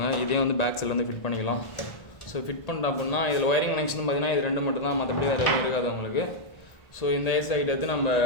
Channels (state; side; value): late; right; 1.4 ms